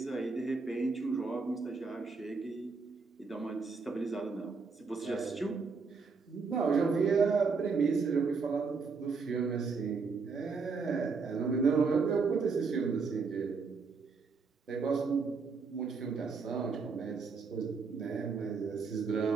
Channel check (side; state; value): left; quieter; 4.8 dB